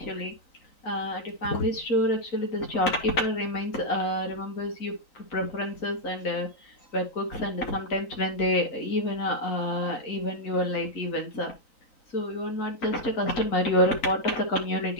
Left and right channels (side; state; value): right; late; 3.9 ms